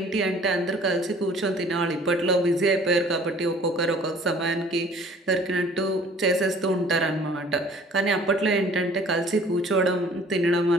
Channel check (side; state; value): both; normal; correlation 0.52